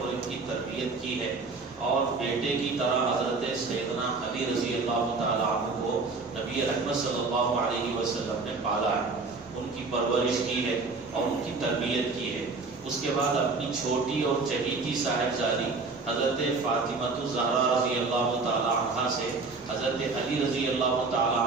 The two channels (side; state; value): left; quieter; 4.0 dB